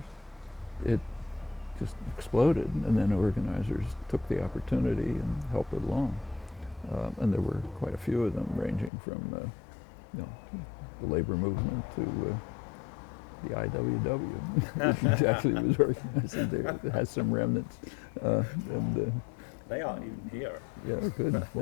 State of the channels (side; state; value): right; drops out; at 8.9 s